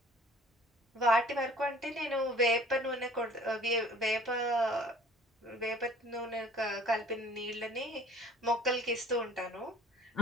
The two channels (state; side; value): normal; both; correlation 0.50